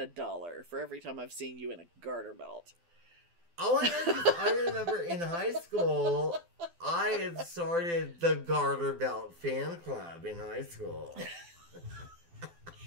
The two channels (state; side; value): late; left; 12 ms